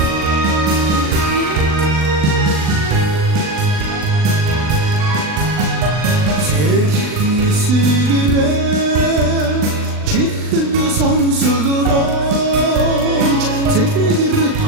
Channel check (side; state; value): left; late; 39 ms